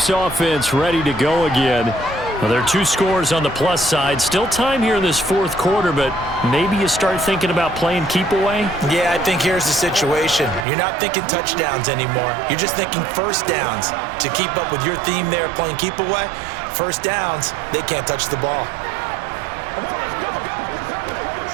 offense ready to go again. Well, there are 2 scores on the plus side. Still time here in this fourth quarter, but maybe you start thinking about playing keep away? Yeah, I think here's the situation. You're not thinking touchdowns anymore. You're just thinking first downs. To keep up with your theme there playing keep away, first downs, they can't touch the ball.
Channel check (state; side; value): drops out; left; at 10.7 s